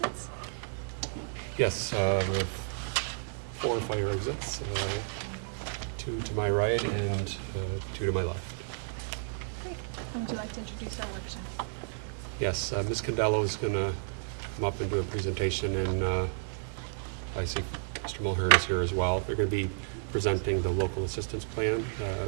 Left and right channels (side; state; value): left; silent; digital silence